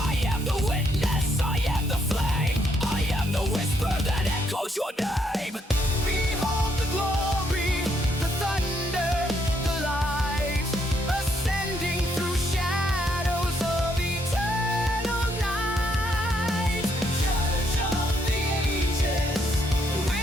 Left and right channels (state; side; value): normal; both; correlation 0.73